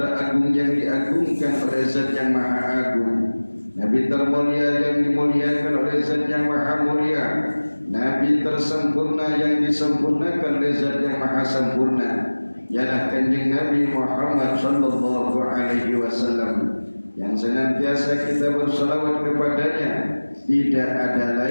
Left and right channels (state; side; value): inverted; both; correlation -1.00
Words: yang diagungkan oleh Zat yang Maha Agung, Nabi termulia yang dimuliakan oleh Zat yang Maha Mulia, Nabi tersempurna yang disempurnakan oleh Zat yang Maha Sempurna, ialah Kanjeng Nabi Muhammad sallallahu alaihi wasallam, yang senantiasa kita bersalawat kepadanya. Tidak ada